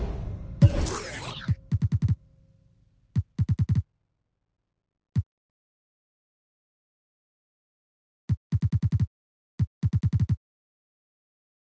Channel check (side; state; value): both; identical; correlation 1.00